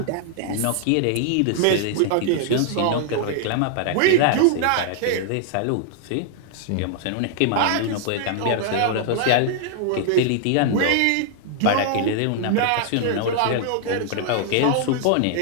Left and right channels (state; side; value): different; both; correlation 0.00